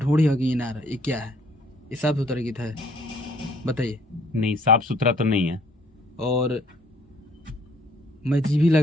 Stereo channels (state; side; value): normal; both; correlation 0.60